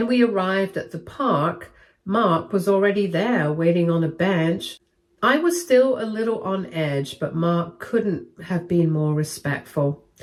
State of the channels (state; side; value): identical; both; correlation 1.00